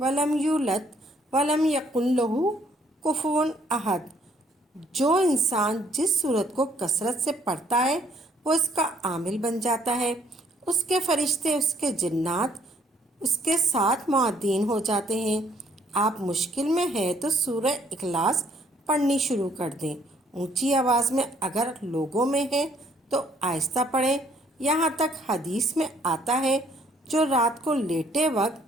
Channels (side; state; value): both; normal; correlation 0.64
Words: یولد ولم یکن لہ کفوا احد۔ جو انسان جس سورت کو کثرت سے پڑھتا ہے وہ اس کا عامل بن جاتا ہے، اس کے فرشتے، اس کے جنات اس کے ساتھ معدین ہو جاتے ہیں۔ آپ مشکل میں ہیں تو سورہ اخلاص پڑھنی شروع کر دیں۔ اونچی آواز میں اگر لوگوں میں ہے تو آہستہ پڑھیں۔ یہاں تک حدیث میں آتا ہے جو رات کو لیٹے وقت